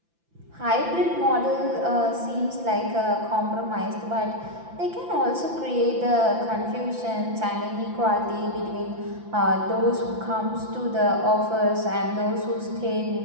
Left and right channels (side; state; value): left; late; 5.9 ms